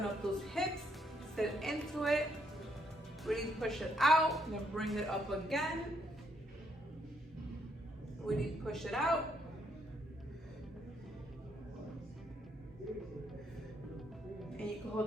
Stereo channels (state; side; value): normal; both; correlation 0.73